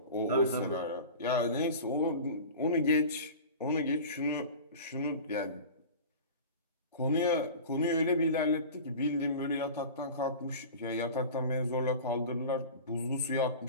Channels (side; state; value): both; inverted; correlation -0.35